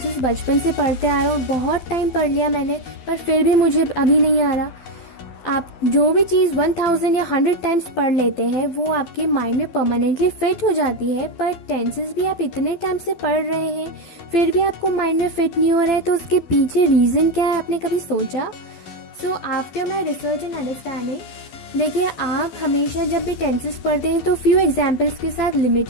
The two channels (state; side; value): late; right; 12 ms